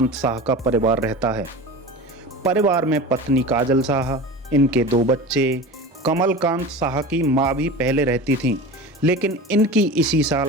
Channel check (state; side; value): normal; both; correlation 0.32